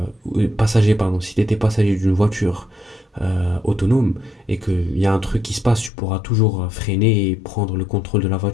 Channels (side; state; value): right; drops out; at 5.9 s